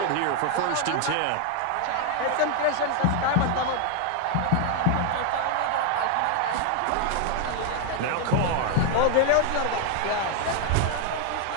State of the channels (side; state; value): both; different; correlation 0.00